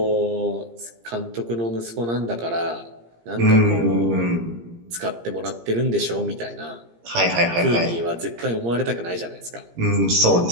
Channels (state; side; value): late; left; 17 ms